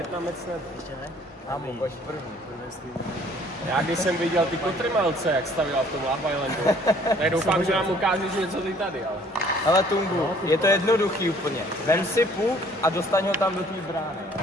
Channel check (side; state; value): both; normal; correlation 0.58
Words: nebyl. Ještě ne? Ámo, pojď první. Já když jsem viděl ty kotrmelce, jak stavila v tom Love Islandu, tak doufám, že nám ukážeš něco ty tady, ale... Hele Tungu, je to jednoduchý úplně. Vem si puk a dostaň ho tam do té brány.